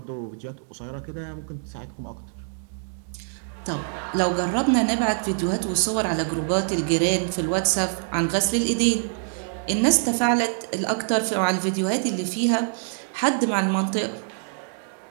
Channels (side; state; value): left; silent; digital silence